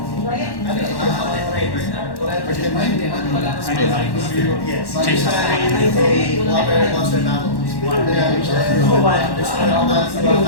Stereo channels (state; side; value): late; right; 1.1 ms